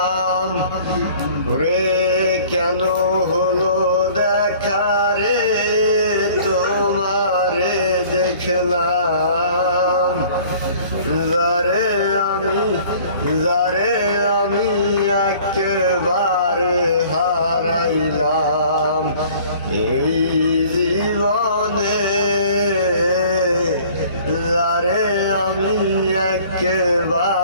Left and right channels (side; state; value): both; inverted; correlation -0.51